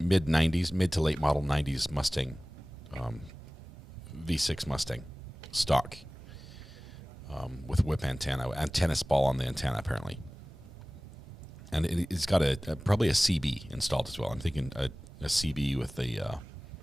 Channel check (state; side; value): normal; both; correlation 0.98